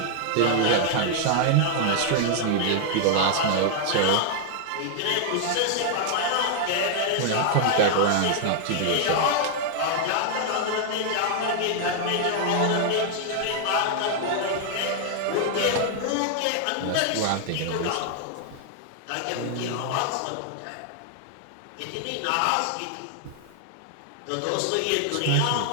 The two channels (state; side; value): different; both; correlation -0.01